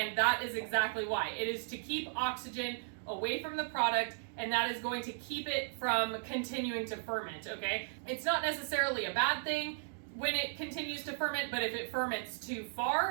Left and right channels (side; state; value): left; silent; digital silence